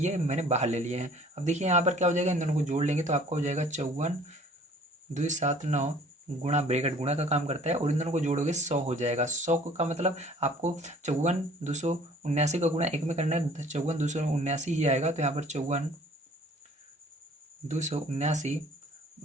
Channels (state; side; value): normal; both; correlation 0.53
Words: मैंने बाहर ले लिए हैं। अब देखिए यहाँ पर क्या हो जाएगा, इन दोनों को जोड़ लेंगे तो आपका हो जाएगा 54,279 गुणा, ब्रैकेट गुणा का काम करता है, और इन दोनों को जोड़ोगे 100 हो जाएगा। 100 का मतलब आपको 54,279 का गुणा एक में करना है, 54,279 ही आएगा। तो यहाँ पर 54,279